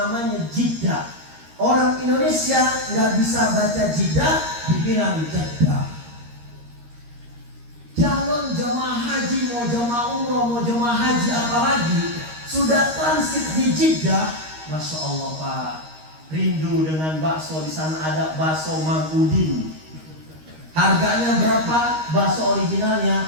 Jeddah. Orang Indonesia nggak bisa baca Jeddah, dibilang Jeddah. Calon jemaah haji, mau jemaah umroh, mau jemaah haji apalagi, sudah transit di Jeddah, Masya Allah Pak, rindu dengan bakso. Di sana ada bakso Mang Udin. Harganya berapa? Bakso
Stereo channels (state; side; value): late; left; 13 ms